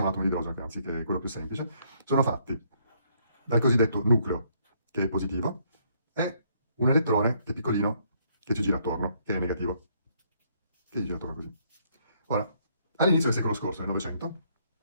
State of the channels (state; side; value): inverted; both; correlation -0.69